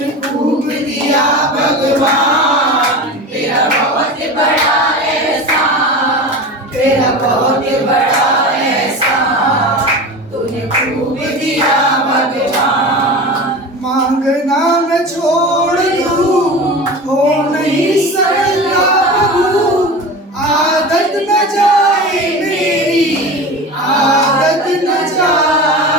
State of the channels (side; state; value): both; normal; correlation 0.30